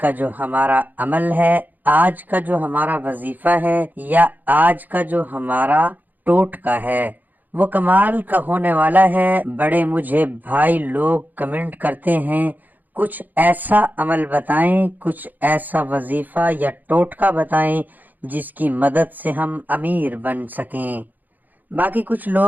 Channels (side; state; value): left; late; 0.084 ms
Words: جو ہمارا عمل ہے، آج کا جو ہمارا وظیفہ ہے یا آج کا جو ہمارا ٹوٹکا ہے وہ کمال کا ہونے والا ہے۔ بڑے مجھے بھائی لوگ کمنٹ کرتے ہیں کچھ ایسا عمل بتائیں، کچھ ایسا وظیفہ یا ٹوٹکا بتائیں جس کی مدد سے ہم امیر بن سکیں۔ باقی کچھ